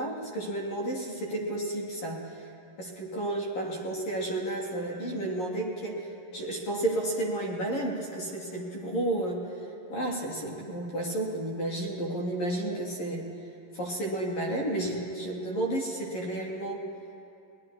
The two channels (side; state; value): right; late; 11 ms